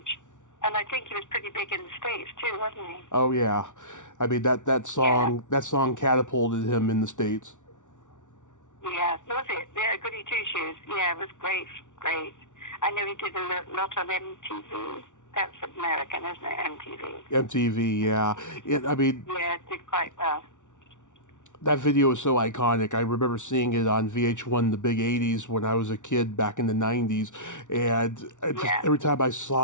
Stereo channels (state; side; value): late; right; 0.86 ms